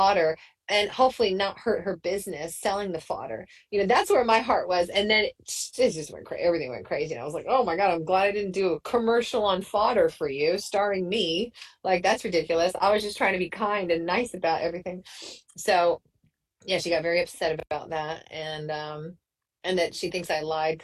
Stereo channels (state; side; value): identical; both; correlation 1.00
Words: and hopefully not hurt her business selling the fodder. You know, that's where my heart was. And then it just went crazy. Everything went crazy. And I was like, oh my God, I'm glad I didn't do a commercial on fodder for you, starring me. Like, that's ridiculous. I was just trying to be kind and nice about everything. So, yeah, she got very upset about that. And and that she thinks I lied